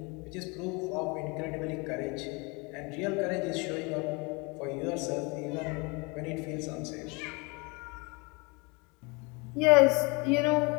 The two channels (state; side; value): quieter; right; 28.8 dB